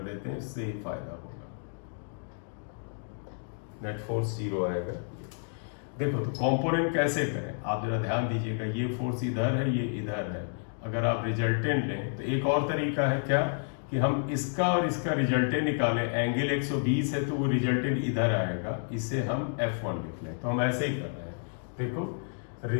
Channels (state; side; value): silent; right; digital silence